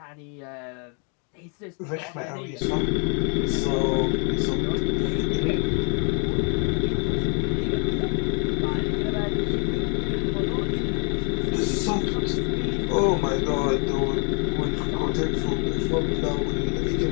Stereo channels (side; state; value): right; quieter; 38.7 dB